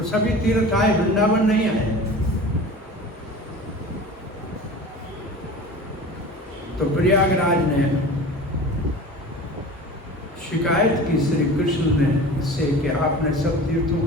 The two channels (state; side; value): normal; both; correlation 0.37